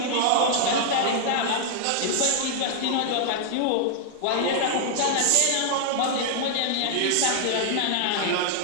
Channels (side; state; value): both; different; correlation -0.01